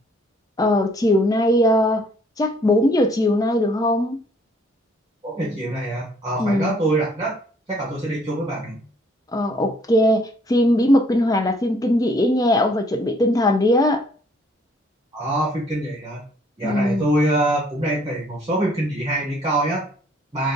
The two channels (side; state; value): both; normal; correlation 0.62